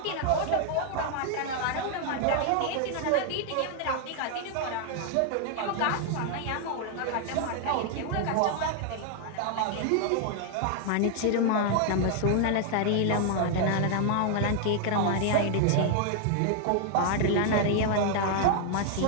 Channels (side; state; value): both; different; correlation 0.00